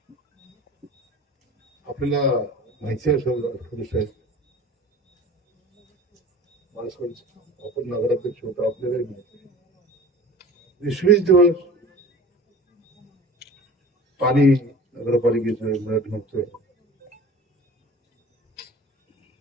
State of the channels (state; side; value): normal; both; correlation 0.41